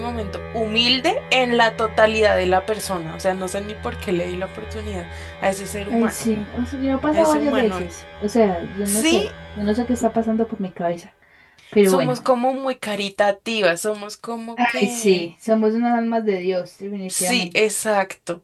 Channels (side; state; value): both; identical; correlation 1.00